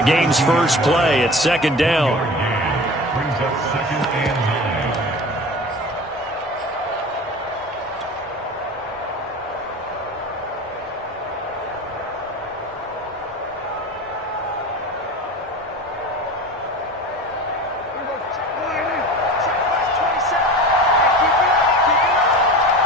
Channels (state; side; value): normal; both; correlation 0.34